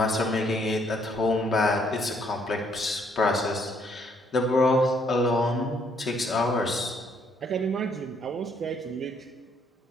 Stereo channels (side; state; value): both; normal; correlation 0.68